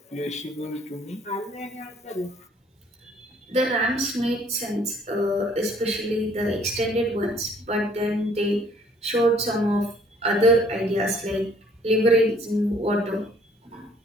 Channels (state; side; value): normal; both; correlation 0.59